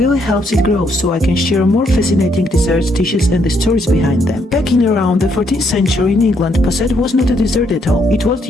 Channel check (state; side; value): normal; both; correlation 0.73